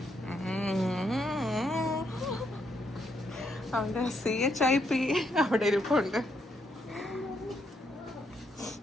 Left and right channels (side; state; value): both; normal; correlation 0.76